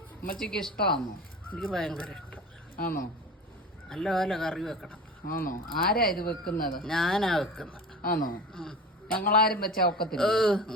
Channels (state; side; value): normal; both; correlation 0.33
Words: അമ്മച്ചിക്ക് ഇഷ്ടമാണോ? എനിക്ക് ഭയങ്കര ഇഷ്ടം. ആണോ? നല്ലപോലെ കറി വെക്കണം. ആണോ? ആരാ ഇത് വെക്കുന്നത്? ഞാനാ വെക്കുന്നത്. ആണോ? ഞങ്ങളാരും വെച്ചാ ഒക്കത്തില്ല.